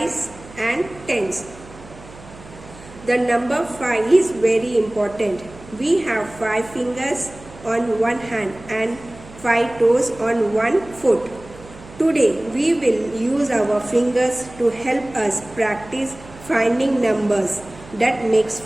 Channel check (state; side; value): noise; right; hum, 19 dB below the sound